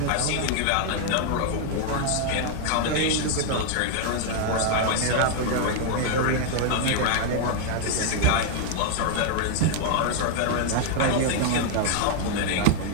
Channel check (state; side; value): different; both; correlation 0.00